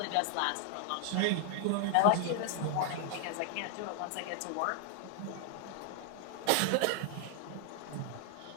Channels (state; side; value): different; both; correlation 0.00